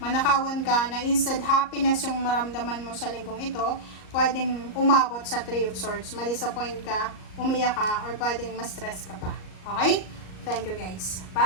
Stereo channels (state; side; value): late; right; 38 ms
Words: ka na instead happiness yung maramdaman mo sa linggong ito, pwedeng umabot sa 3 of Swords, ma-disappoint ka, umiyak ka, or pwedeng ma-stress ka pa. Okay? Thank you guys.